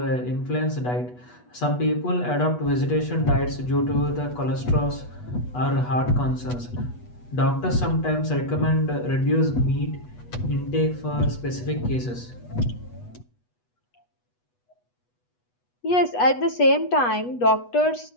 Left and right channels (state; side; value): late; right; 8.2 ms